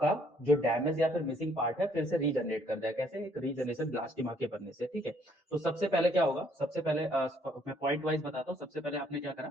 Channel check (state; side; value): normal; both; correlation 0.65